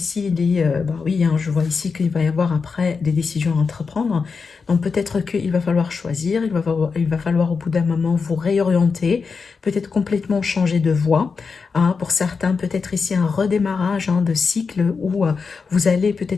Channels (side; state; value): right; quieter; 5.1 dB